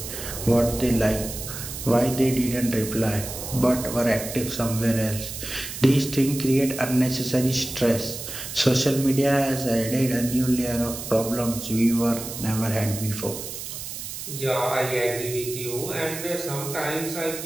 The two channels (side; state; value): right; noise; hiss, 8 dB below the sound